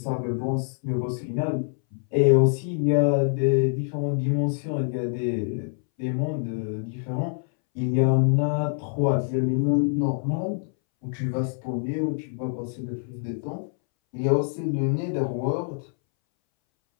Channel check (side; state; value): right; silent; 61 dB below the other